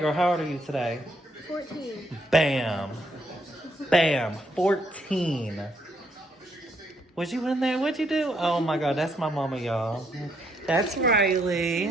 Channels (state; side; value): normal; both; correlation 0.73